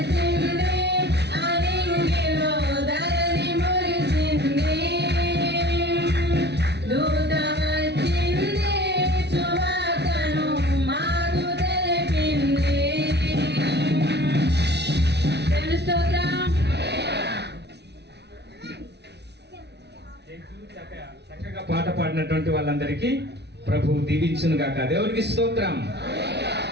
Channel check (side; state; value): left; late; 0.49 ms